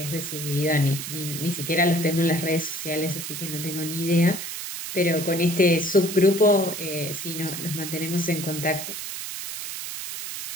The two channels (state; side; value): noise; right; hiss, 7 dB below the sound